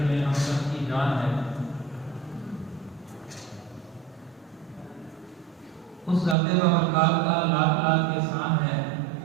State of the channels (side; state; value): left; drops out; at 6.4 s